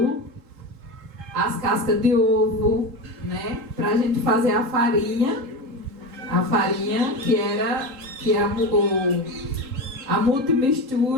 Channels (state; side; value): late; left; 3.7 ms